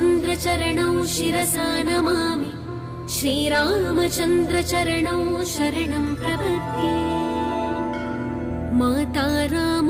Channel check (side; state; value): both; identical; correlation 1.00